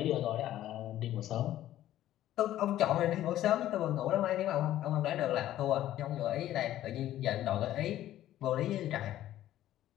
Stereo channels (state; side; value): quieter; right; 13.2 dB